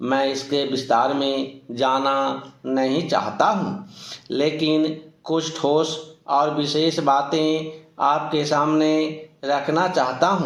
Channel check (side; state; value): both; identical; correlation 1.00